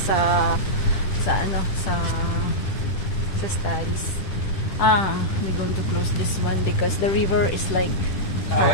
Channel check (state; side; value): late; right; 10 ms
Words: studies. I'm going to close this one because the river is like